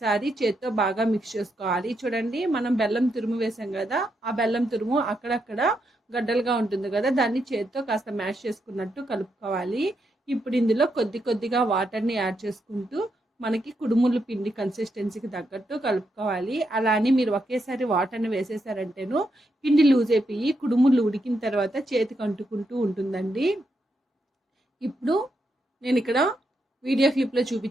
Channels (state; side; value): normal; both; correlation 0.81